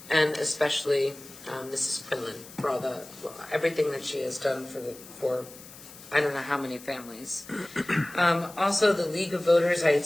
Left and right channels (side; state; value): left; noise; hiss, 18 dB below the sound